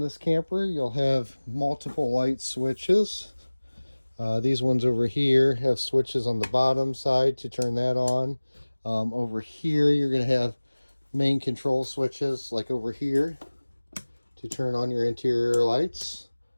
camper, you'll have multiple light switches. These ones over here have switches on the bottom side to turn that on. Over here, you're going to have main control switches like over here to turn on your interior lights.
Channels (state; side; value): inverted; both; correlation -1.00